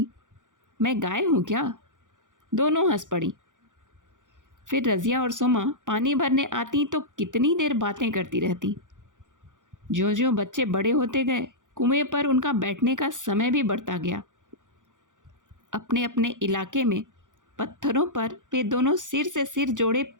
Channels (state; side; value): late; left; 0.87 ms